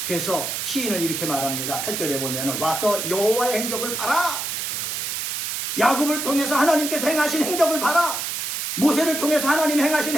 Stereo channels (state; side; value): noise; right; hiss, 3 dB below the sound